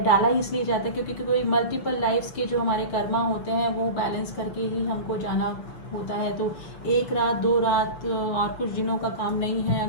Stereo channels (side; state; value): right; late; 6.9 ms